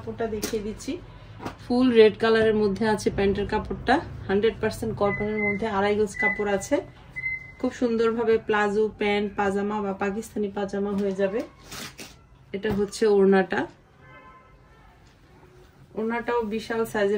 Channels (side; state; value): both; identical; correlation 1.00